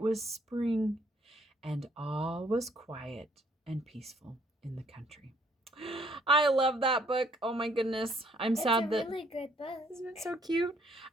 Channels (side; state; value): both; normal; correlation 0.65